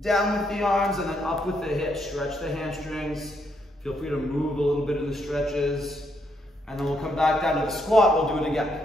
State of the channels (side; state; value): both; normal; correlation 0.75